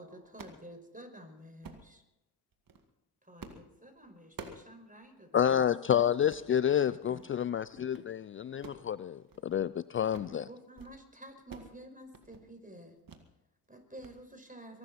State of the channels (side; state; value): right; quieter; 8.6 dB